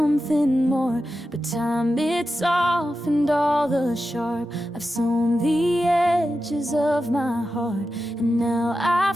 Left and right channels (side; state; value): both; normal; correlation 0.91